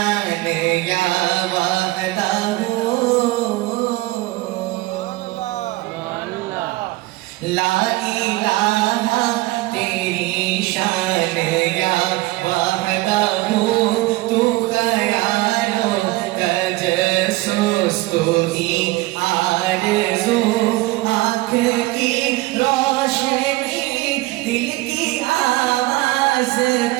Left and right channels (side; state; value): left; quieter; 19.8 dB